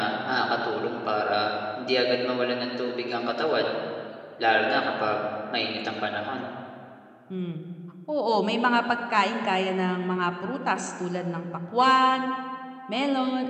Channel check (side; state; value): both; identical; correlation 1.00